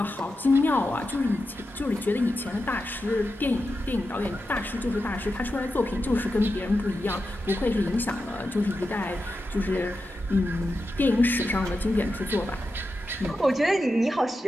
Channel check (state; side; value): normal; both; correlation 0.89